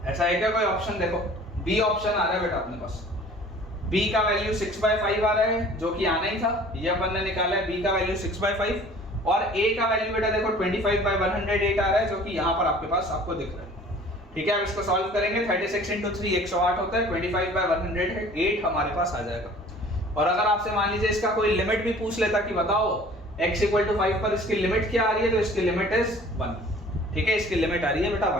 ऐसा है क्या कोई ऑप्शन? देखो बी ऑप्शन आ रहा है बेटा अपने पास, b का वैल्यू 6/5 आ रहा है, जो कि आना ही था, ये अपन ने निकाला है, b का वैल्यू 6/5, और a का वैल्यू बेटा देखो 25/108 आ रहा है, जो कि यहाँ पर आपके पास आपको दिख रहा है, ठीक है। अब इसको सॉल्व करेंगे, 36 into 3 108 होता है, 25/108 हमारे पास आ जाएगा। और अगर आपसे मान लीजिए इसका कोई लिमिट भी पूछ लेता कि बताओ x = 5 पर इसकी लिमिट क्या आ रही है, तो इसकी लिमिट इज 1, ठीक है, इसकी लिमिट आ रही है बेटा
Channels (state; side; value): normal; both; correlation 0.49